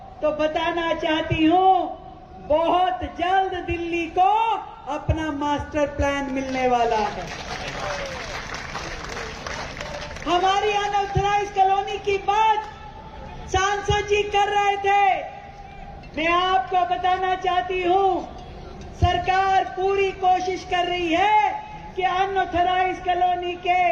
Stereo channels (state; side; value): identical; both; correlation 1.00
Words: तो बताना चाहती हूं, बहुत जल्द दिल्ली को अपना मास्टर प्लान मिलने वाला है। हमारी अनऑथराइज्ड कॉलोनी की बात सांसद जी कर रहे थे। मैं आपको बताना चाहती हूं, सरकार पूरी कोशिश कर रही है कि अनऑथराइज्ड कॉलोनी के